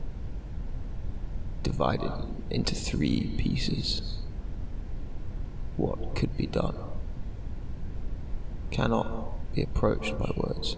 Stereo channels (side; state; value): both; identical; correlation 1.00